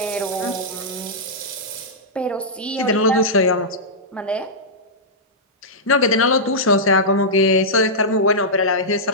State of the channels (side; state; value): both; normal; correlation -0.12